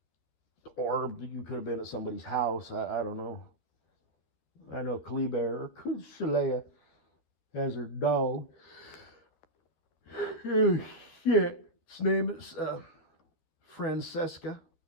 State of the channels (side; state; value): right; late; 13 ms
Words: Or you could have been at somebody's house. I don't know. I know Kleber or Shalea has her dog. Oh, shit. His name is Francesca.